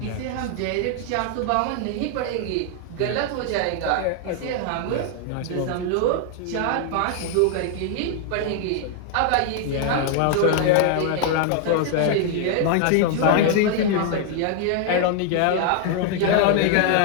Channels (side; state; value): both; different; correlation 0.00